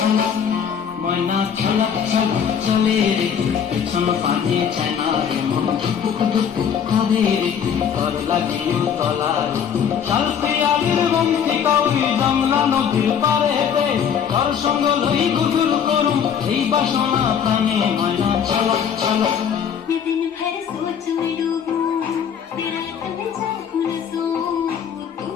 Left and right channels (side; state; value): right; quieter; 7.8 dB